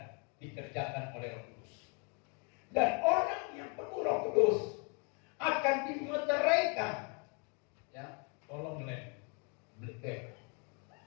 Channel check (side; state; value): right; quieter; 35.6 dB